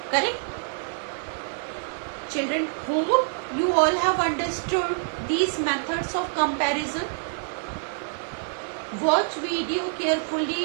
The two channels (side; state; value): left; silent; digital silence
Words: Correct? Children, hope you all have understood these methods of comparison. Watch video